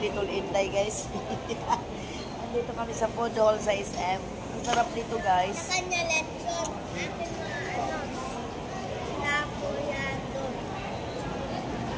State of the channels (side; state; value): both; identical; correlation 1.00